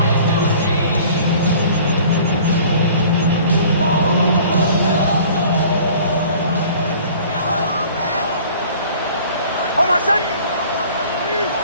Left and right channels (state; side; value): inverted; both; correlation -0.49